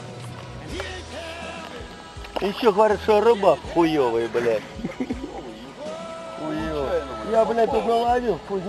Еще говорят, что рыба хуёвая, блядь. Хуёвая. Я, блядь, тут наловил, хуй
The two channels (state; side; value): identical; both; correlation 1.00